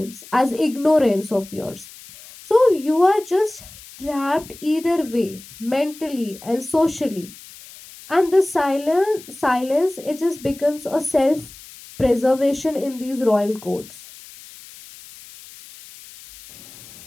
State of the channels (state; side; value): noise; left; hiss, 19 dB below the sound